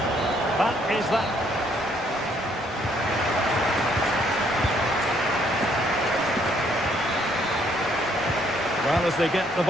That is that. Well, as they get the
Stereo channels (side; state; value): both; normal; correlation 0.67